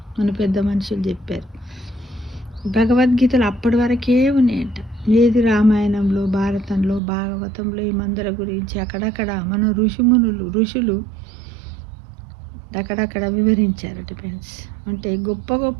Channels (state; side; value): drops out; left; at 7.0 s